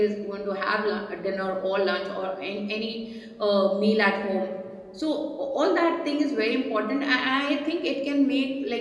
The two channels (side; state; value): both; identical; correlation 1.00